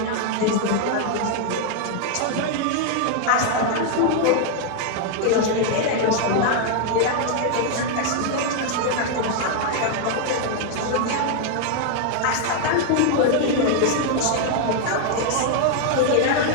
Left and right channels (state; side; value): different; both; correlation 0.00